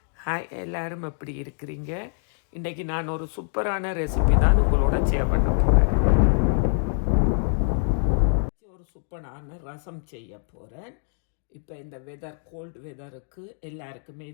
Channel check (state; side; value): silent; right; digital silence